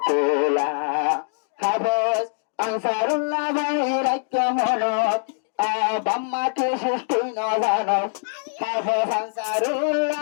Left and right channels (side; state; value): right; silent; digital silence